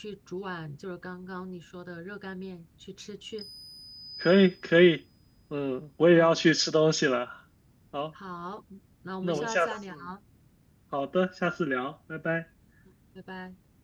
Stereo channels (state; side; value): identical; both; correlation 1.00